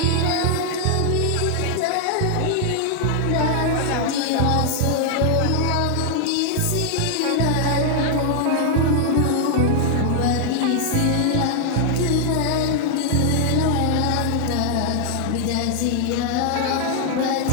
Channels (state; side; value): different; both; correlation 0.00